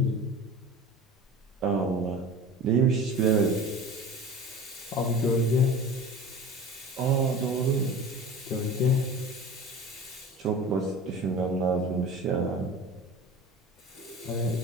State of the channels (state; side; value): normal; both; correlation 0.37